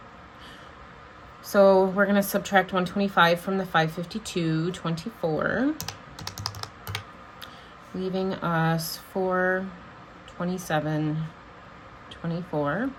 So we're going to subtract $125 from the $552.24, leaving us $427.24.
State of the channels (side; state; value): both; identical; correlation 1.00